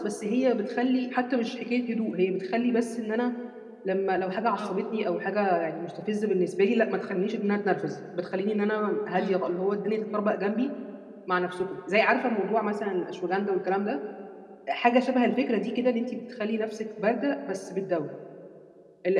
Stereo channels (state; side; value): identical; both; correlation 1.00